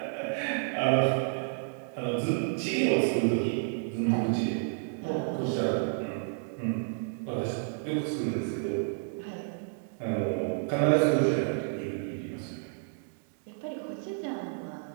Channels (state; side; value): silent; left; digital silence